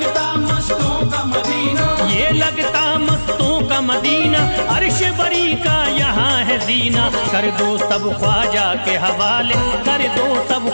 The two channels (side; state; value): both; inverted; correlation -1.00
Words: मस्तों का मदीना, ये लगता मस्तों का मदीना, अर्श बरी का यहाँ है जीना। कर दो सब ख्वाजा के हवाले, कर दो सब